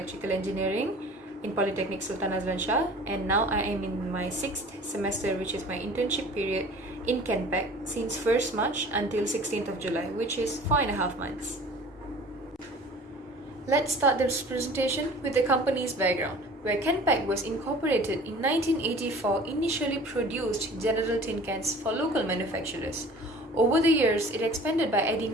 Engineering in Polytechnic Sultan Azlan Shah, and now I am in my 6th semester, which is my internship period in Kenpack since 1st March until 16th of July, which is 4.5 months. Let's start this presentation with the company's background, where Kenpack was incorporated in 1984, initially produced general tin cans for local manufacturers. Over the years, it expanded by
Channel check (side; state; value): both; normal; correlation 0.45